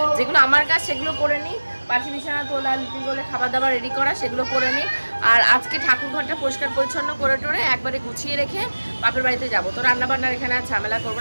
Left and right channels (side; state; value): both; inverted; correlation -1.00